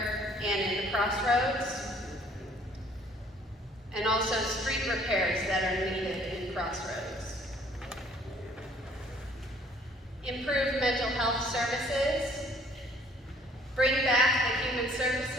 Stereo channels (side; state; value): both; normal; correlation 0.59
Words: and in the crossroads. And also street repairs that are needed in crossroads. Improve mental health services. Bring back the Human